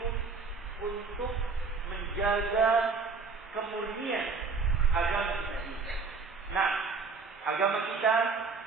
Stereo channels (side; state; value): left; quieter; 4.7 dB